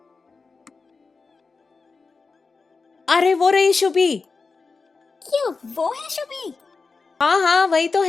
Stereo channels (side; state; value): right; quieter; 4.4 dB